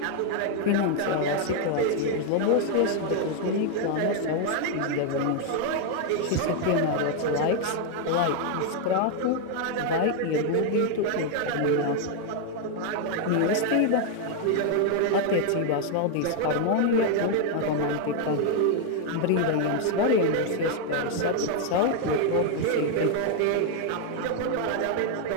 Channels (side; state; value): both; different; correlation 0.00